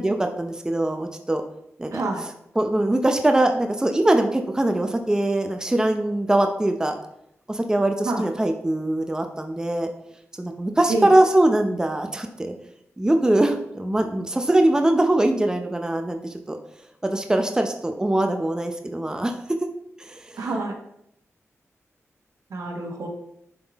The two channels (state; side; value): normal; both; correlation 0.95